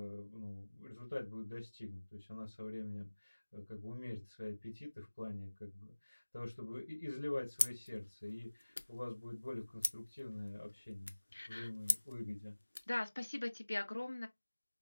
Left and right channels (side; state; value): both; inverted; correlation -1.00